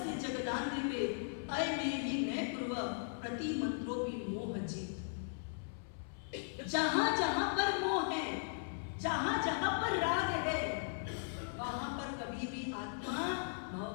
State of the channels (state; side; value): silent; right; 52 dB below the other